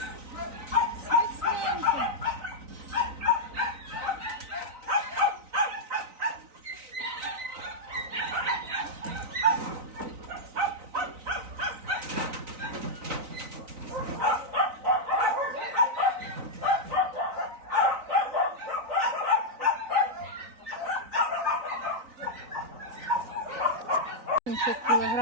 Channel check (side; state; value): left; late; 3.9 ms